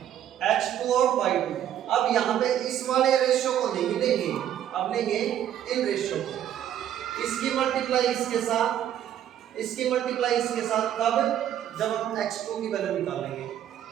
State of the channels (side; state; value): left; quieter; 10.7 dB